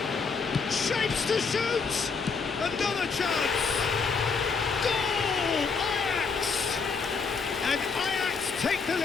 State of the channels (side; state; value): right; quieter; 5.1 dB